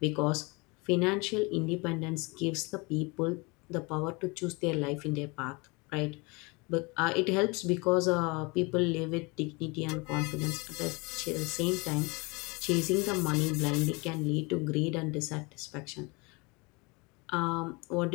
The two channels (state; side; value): quieter; right; 27.3 dB